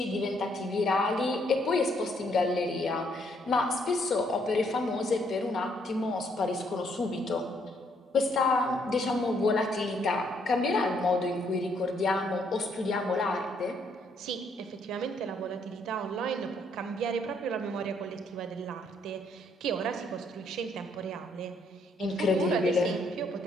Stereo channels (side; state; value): both; normal; correlation 0.70